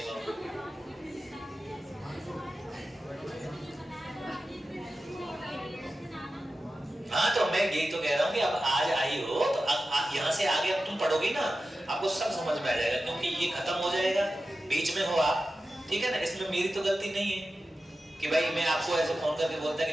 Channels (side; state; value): both; normal; correlation 0.93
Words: हाँ तो मैं यही तो कह रहा हूँ कि अब आज आई हो तो यहाँ से आगे अब तुम पढ़ोगी ना, आपको सब समझ में आ जाएगा, क्योंकि ये खत्म हो जाएगा, बीच में हो आप, ठीक है ना। इसमें मेरी तो गलती नहीं है कि भाई मैं आपको ऐसे फोन करके बोलता